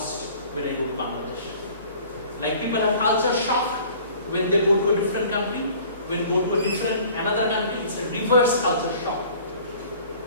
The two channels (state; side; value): inverted; both; correlation -0.49